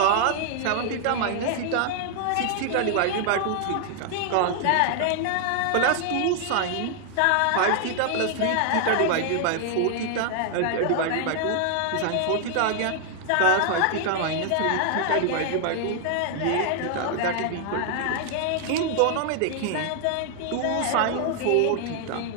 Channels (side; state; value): both; different; correlation 0.00